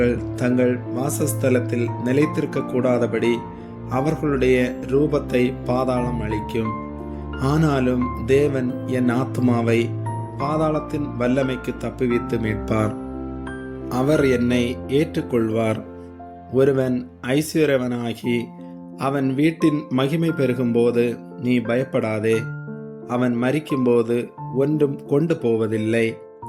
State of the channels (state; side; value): identical; both; correlation 1.00